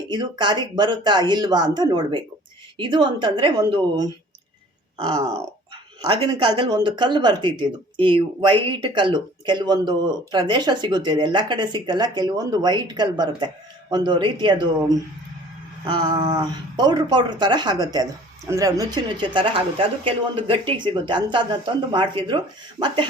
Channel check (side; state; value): both; normal; correlation 0.50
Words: ಇದು ಕಾರ್ಯಕ್ಕೆ ಬರುತ್ತಾ ಇಲ್ವಾ ಅಂತ ನೋಡಬೇಕು. ಇದು ಅಂತಂದರೆ ಒಂದು ಆಗಿನ ಕಾಲದಲ್ಲಿ ಒಂದು ಕಲ್ಲು ಬರ್ತಿತ್ತು. ಇದು ಈ ವೈಟ್ ಕಲ್ಲು ಕೆಲವೊಂದು ಪ್ರದೇಶ ಸಿಗುತ್ತೆ. ಇದು ಎಲ್ಲ ಕಡೆ ಸಿಕ್ಕಲ್ಲ. ಕೆಲವೊಂದು ವೈಟ್ ಕಲ್ಲು ಬರುತ್ತೆ. ಒಂದು ರೀತಿ ಅದು ಪೌಡ್ರ್ ಥರ ಆಗುತ್ತೆ. ಅದು ಅಂದರೆ ನುಚ್ಚು ಥರ ಆಗುತ್ತೆ. ಅದು ಕೆಲವೊಂದು ಗಟ್ಟಿಗೆ ಸಿಗುತ್ತೆ. ಅಂಥದ್ದನ್ನ ತಂದು ಮಾಡ್ತಿದ್ರು. ಮತ್ತು